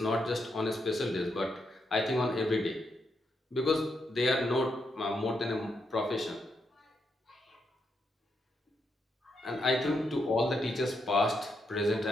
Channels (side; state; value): both; normal; correlation 0.81